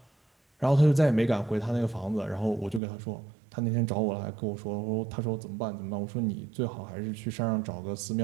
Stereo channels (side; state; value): left; drops out; at 2.8 s